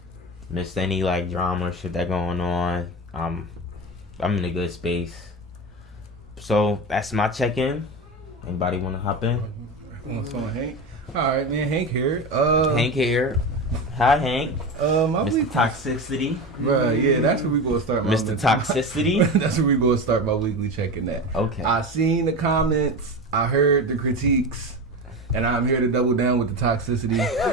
Missed any like drama or shit that going on. I'm in a good space. So that's my check-in. Anybody want to hop in? Hank. All right, man. Hank here. Hank here. Hi, Hank. Mr. Toxicity. Right, yeah, that's where we gonna start. Mr. Toxicity. That's where we gonna start my weekly check-in at. Okay. I seen the comments. I heard the critiques. And I'm here to double down with the toxicity.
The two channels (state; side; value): normal; both; correlation 0.24